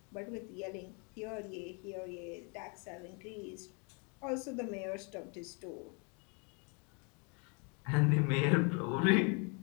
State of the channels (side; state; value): right; quieter; 34.4 dB